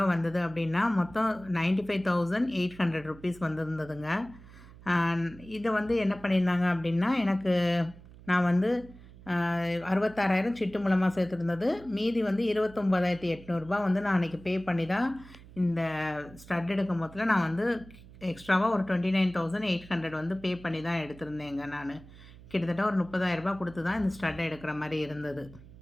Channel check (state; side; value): noise; right; hum, 20 dB below the sound